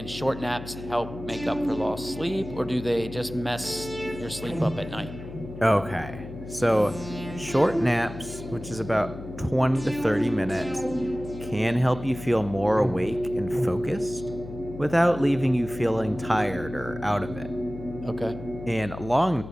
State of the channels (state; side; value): noise; left; hum, 12 dB below the sound